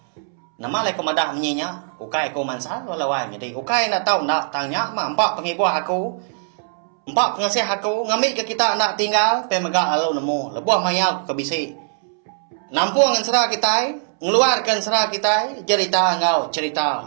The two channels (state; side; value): silent; left; 65 dB below the other